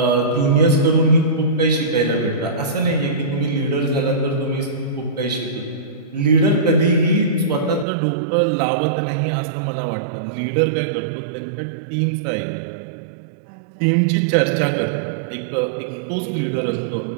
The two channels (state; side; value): drops out; left; at 7.9 s